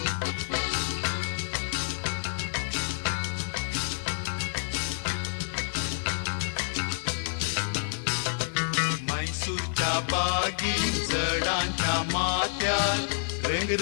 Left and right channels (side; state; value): right; silent; digital silence